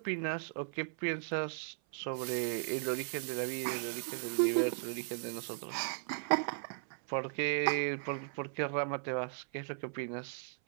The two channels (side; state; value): left; silent; 53 dB below the other